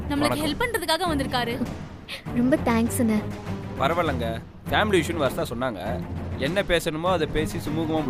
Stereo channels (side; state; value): both; identical; correlation 1.00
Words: நம்மளுக்கு ஹெல்ப் பண்றதுக்காக வந்திருக்காரு. ரொம்ப தேங்க்ஸ்ண்ணே. பரவாயில்லங்க, ஃபேமிலி இஷ்யூன்னு வரதா சொன்னாங்க. என்ன பேசணுமோ அதை பேசி சுமூகமா